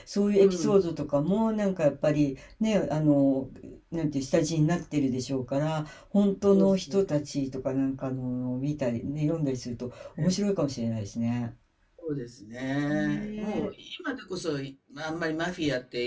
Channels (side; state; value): both; identical; correlation 1.00